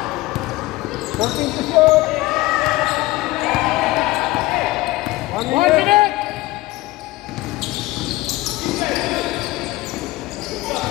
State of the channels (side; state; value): right; quieter; 19.1 dB